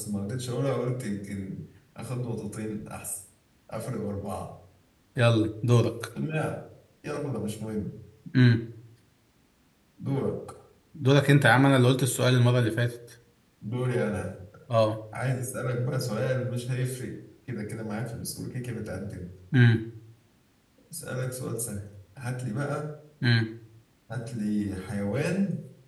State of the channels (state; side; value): identical; both; correlation 1.00